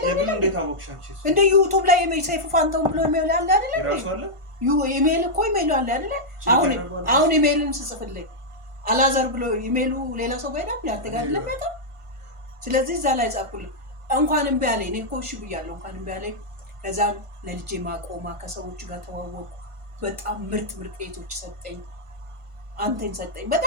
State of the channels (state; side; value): late; left; 1.5 ms